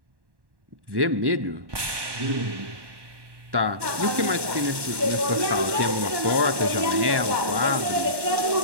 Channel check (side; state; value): left; late; 1.1 ms